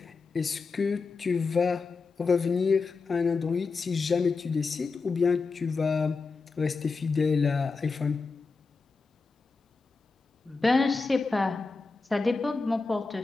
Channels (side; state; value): right; quieter; 4.3 dB